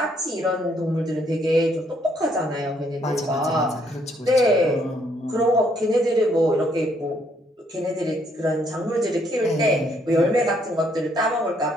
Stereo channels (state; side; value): normal; both; correlation 0.69